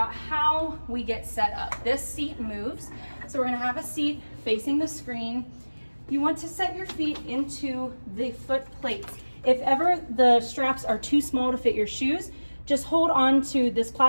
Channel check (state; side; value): inverted; both; correlation -1.00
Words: how we get set up. This seat moves. So we're gonna have a seat facing the screen. You want to set your feet into the foot plates. If ever the straps are too small to fit your shoes, just hold on to this